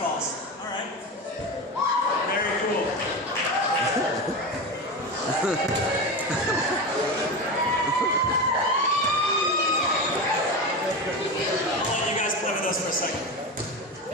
All right. Very cool. I'll let you guys play with us for a second.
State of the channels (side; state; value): both; normal; correlation 0.22